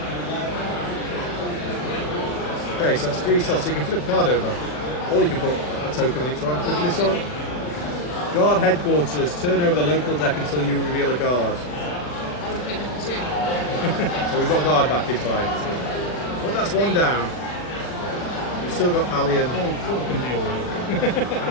Okay, so that's 3 stealth. So you can flip a card over, or you can put a token on each one. Flipping this one. Guard headquarters. Turn over the local deck until you reveal a guard. I would pick number 2. So we've got guard back in play. But that's 1 down. We've still got Pally and. Paul can deal with it.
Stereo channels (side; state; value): right; late; 40 ms